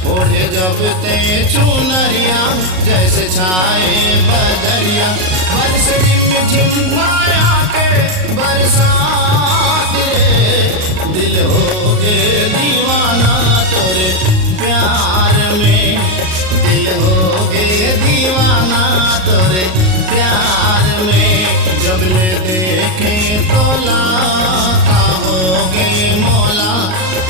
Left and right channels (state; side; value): late; left; 38 ms